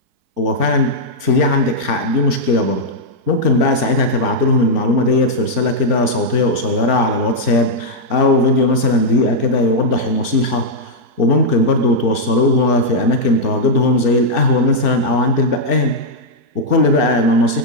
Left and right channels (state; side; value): late; left; 4.4 ms